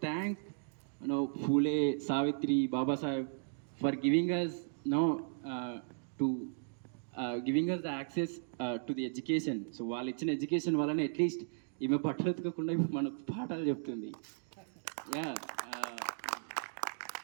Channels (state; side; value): silent; left; digital silence